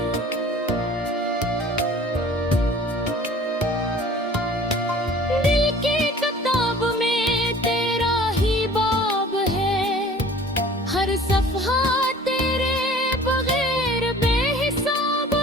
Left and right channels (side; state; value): both; normal; correlation 0.48